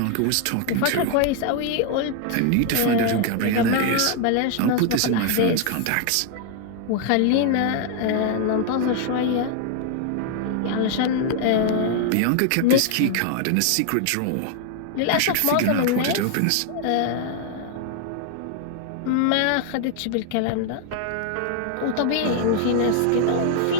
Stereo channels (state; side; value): different; both; correlation 0.00